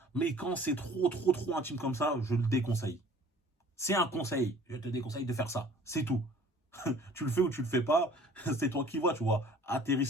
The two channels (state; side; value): normal; both; correlation 0.50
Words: Mais quand c'est trop intime comme ça, je le déconseille. C'est un conseil. Je te déconseille de faire ça. C'est tout. Tu le fais ou tu le fais pas, c'est toi qui vois, tu vois. À tes